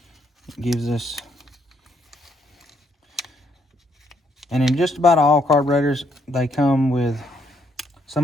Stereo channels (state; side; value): normal; both; correlation 0.73